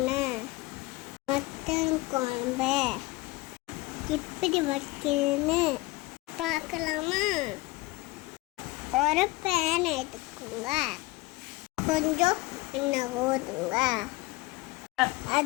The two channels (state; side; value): quieter; right; 21.5 dB